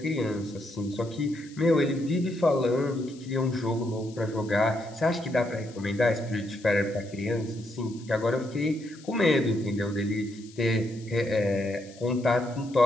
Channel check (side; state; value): left; noise; hiss, 23 dB below the sound